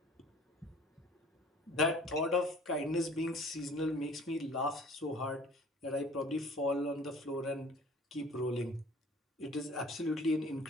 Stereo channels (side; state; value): both; normal; correlation 0.49